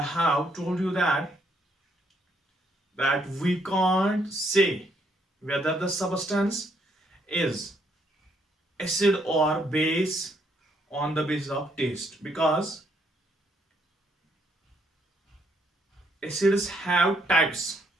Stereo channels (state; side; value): normal; both; correlation 0.71